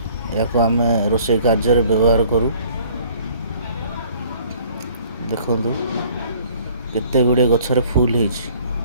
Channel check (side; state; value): both; inverted; correlation -0.55